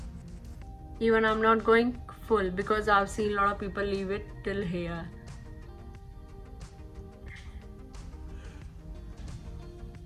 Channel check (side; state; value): both; identical; correlation 1.00